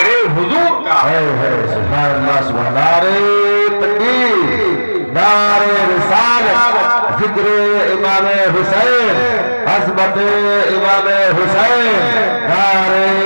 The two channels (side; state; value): both; inverted; correlation -1.00